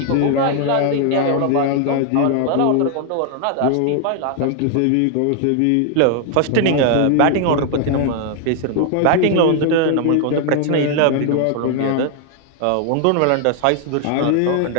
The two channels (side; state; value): both; different; correlation 0.00